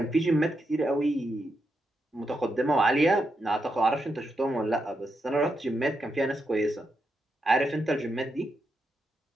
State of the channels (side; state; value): both; normal; correlation 0.84